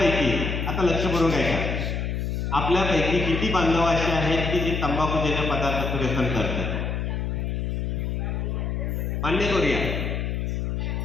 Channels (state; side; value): noise; left; hum, 1 dB below the sound